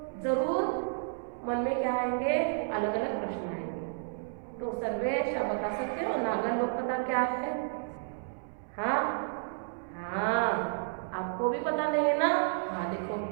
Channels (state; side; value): silent; left; 57 dB below the other